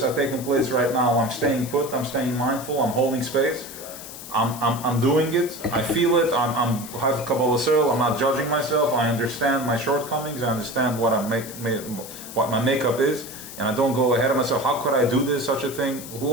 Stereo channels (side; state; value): left; noise; hiss, 13 dB below the sound